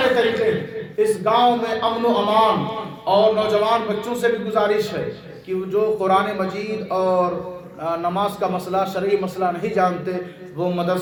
طریقے ہیں۔ اس گاؤں میں امن و امان، اور نوجوان بچوں سے بھی گزارش ہے کہ جو قرآن مجید اور نماز کا مسئلہ، شرعی مسئلہ نہیں جانتے، وہ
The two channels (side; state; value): both; identical; correlation 1.00